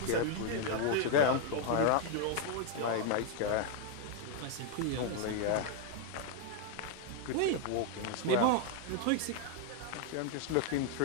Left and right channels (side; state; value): both; different; correlation 0.00